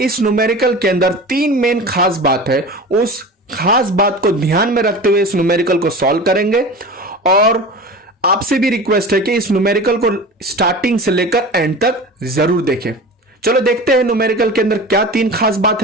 इस न्यूमेरिकल के अंदर तीन मेन खास बात है। उस खास बात को ध्यान में रखते हुए इस न्यूमेरिकल को सॉल्व करेंगे और आपसे भी रिक्वेस्ट है कि इस न्यूमेरिकल को स्टार्टिंग से लेकर एंड तक जरूर देखें। चलो देखते हैं न्यूमेरिकल के अंदर क्या तीन खास बात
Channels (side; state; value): both; normal; correlation 0.33